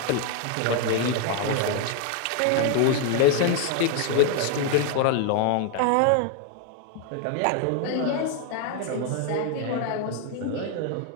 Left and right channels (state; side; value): different; both; correlation 0.00